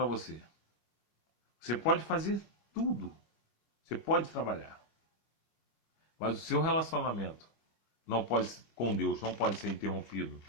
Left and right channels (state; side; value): late; right; 25 ms